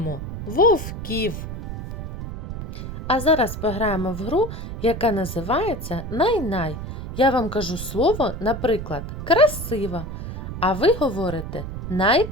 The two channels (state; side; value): noise; right; rumble, 7 dB below the sound